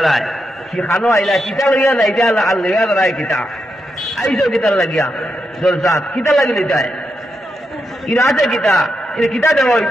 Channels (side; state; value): both; normal; correlation 0.84